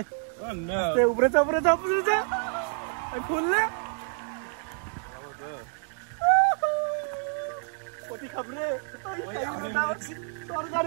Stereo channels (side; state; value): left; silent; digital silence